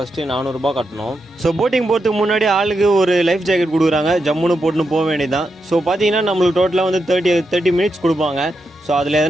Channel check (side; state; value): both; normal; correlation 0.85